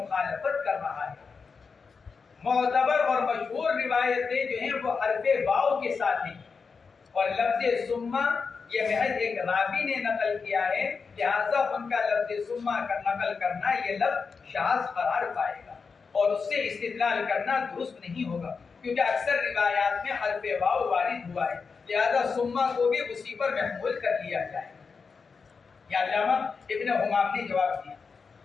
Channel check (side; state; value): right; quieter; 5.1 dB